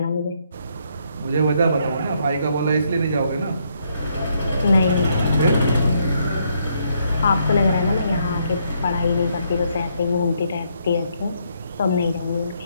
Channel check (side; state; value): both; inverted; correlation -0.74